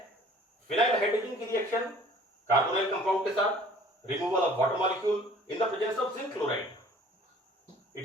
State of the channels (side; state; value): both; normal; correlation 0.51